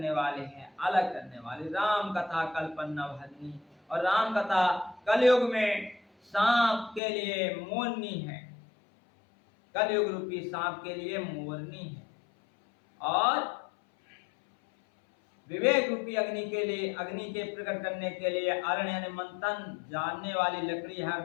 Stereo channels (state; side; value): drops out; right; at 7.0 s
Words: वाले हैं, अलग करने वाले। राम कथा कल्पना भरनी, और राम कथा कलयुग में सांप के लिए मोरनी है, कलयुग रूपी सांप के लिए मोरनी है, और विवेक रूपी अग्नि के लिए, अग्नि के प्रकट करने के लिए अरण्य यानी मंथन जानने वाली लकड़ी है,